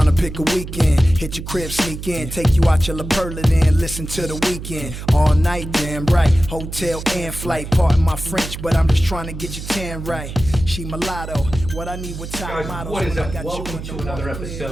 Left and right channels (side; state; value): right; noise; hum, 9 dB below the sound